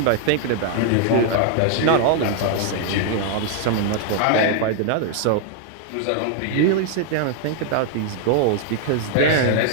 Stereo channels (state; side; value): different; both; correlation 0.00